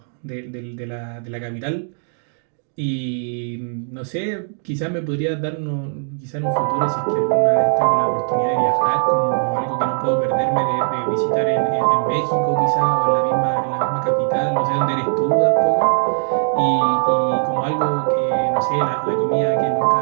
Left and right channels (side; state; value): left; silent; digital silence